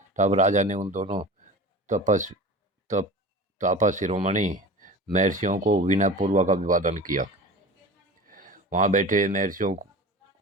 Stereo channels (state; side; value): normal; both; correlation 0.35